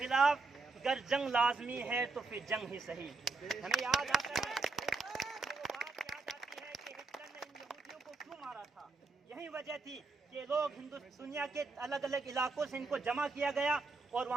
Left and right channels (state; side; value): quieter; left; 3.8 dB